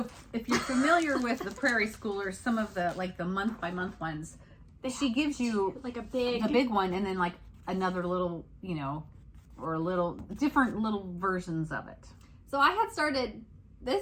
if you're familiar with the Prairie Schooler, some of the the month by month ones, she gives you like a big one and then another little, or different little versions of it. So I had started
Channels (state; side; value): identical; both; correlation 1.00